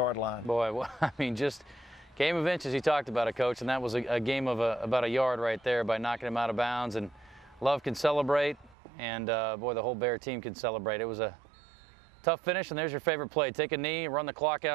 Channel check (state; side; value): drops out; left; at 8.8 s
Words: line. Boy, well, I mean, just game of inches. You talked about it, Coach, and that was a game of about a yard right there by knocking him out of bounds. And Love can celebrate, and boy, the whole Bear team can celebrate. It was a tough finish, and there's your favorite play. Take a knee, run the clock